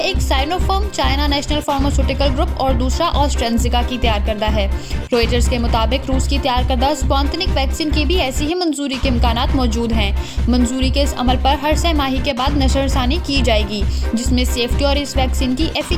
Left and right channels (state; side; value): identical; both; correlation 1.00